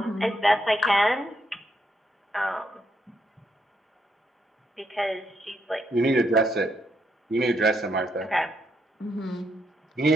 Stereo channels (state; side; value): normal; both; correlation 0.77